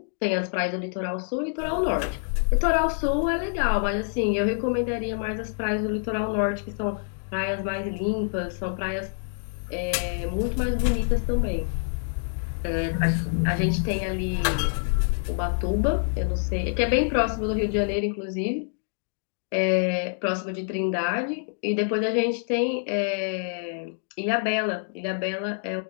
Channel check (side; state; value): right; silent; digital silence